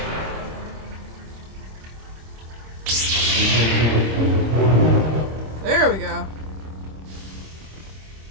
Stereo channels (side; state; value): left; late; 26 ms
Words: There we go.